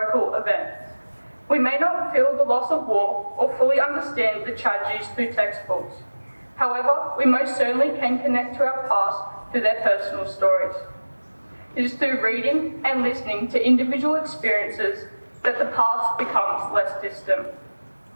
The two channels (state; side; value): inverted; both; correlation -1.00